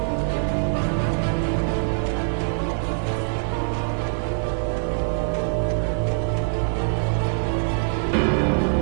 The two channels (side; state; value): left; silent; digital silence